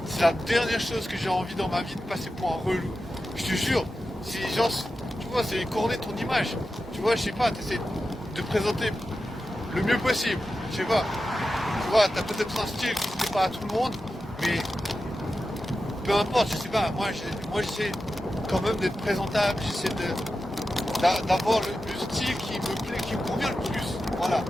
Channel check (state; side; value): normal; both; correlation 0.92